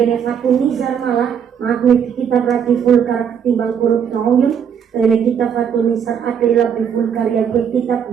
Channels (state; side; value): quieter; left; 7.9 dB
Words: Fatul Nizar malah maaf nih kita berarti vulgar ketimbang kurut nauyun. Ini kita Fatul Nizar adalah lebih vulgar yang kita